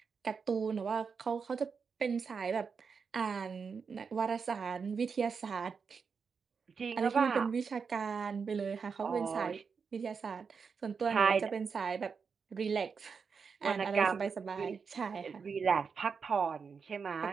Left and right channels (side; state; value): left; quieter; 5.7 dB